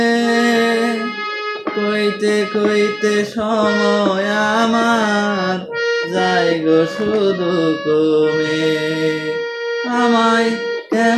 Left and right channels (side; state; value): both; identical; correlation 1.00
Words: কইতে কইতে সময় আমার যায় গো শুধু কমে। আমায়